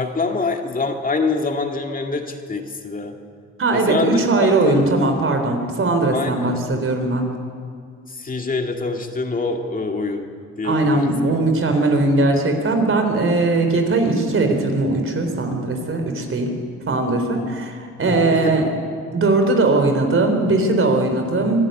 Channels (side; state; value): both; normal; correlation 0.34